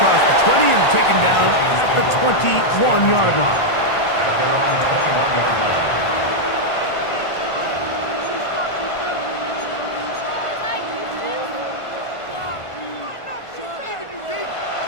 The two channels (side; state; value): right; late; 1.5 ms